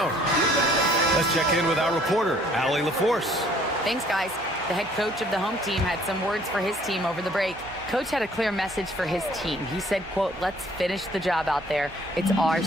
Let's check in with our reporter, Allie LaForce. Thanks, guys. The head coach of the home team had some words for his team over the break. Coach had a clear message for his team. He said, quote, let's finish the job out there. It's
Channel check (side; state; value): right; noise; hum, 21 dB below the sound